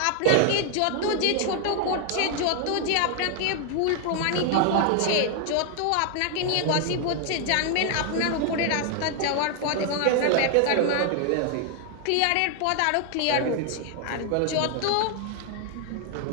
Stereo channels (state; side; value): different; both; correlation 0.00